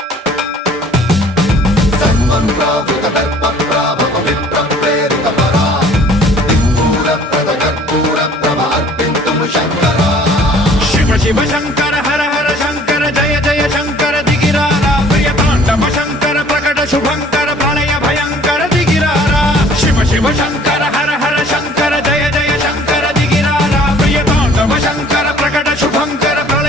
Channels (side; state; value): both; normal; correlation 0.54